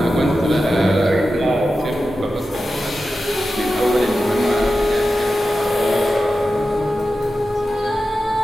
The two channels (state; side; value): normal; both; correlation 0.92